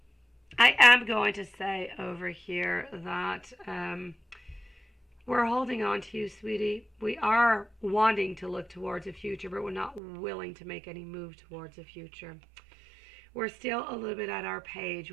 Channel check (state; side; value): drops out; left; at 10.0 s